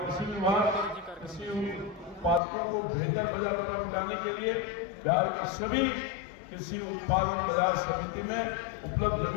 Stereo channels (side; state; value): right; drops out; at 2.4 s